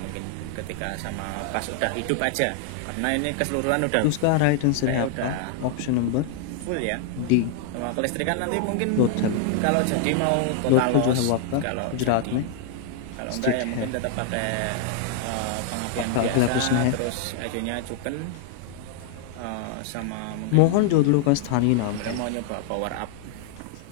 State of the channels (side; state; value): both; different; correlation 0.00